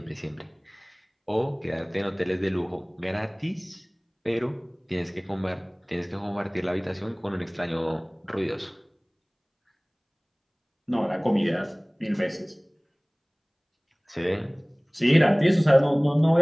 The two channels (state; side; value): identical; both; correlation 1.00